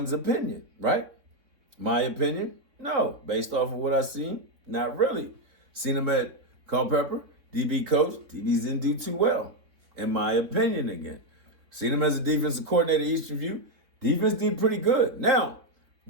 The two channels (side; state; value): left; late; 3.6 ms